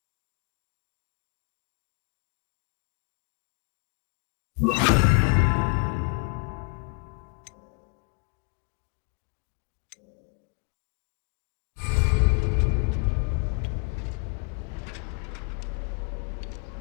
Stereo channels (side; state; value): right; quieter; 34.0 dB